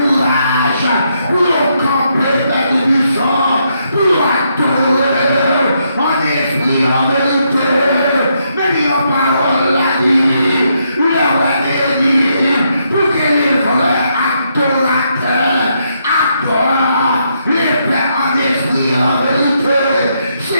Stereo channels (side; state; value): both; inverted; correlation -0.77